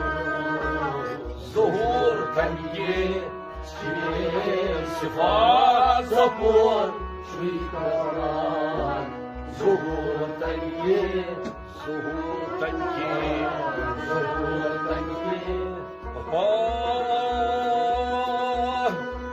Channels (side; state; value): both; identical; correlation 1.00